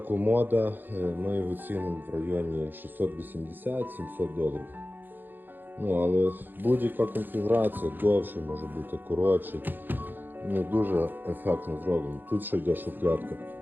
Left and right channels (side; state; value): left; late; 0.091 ms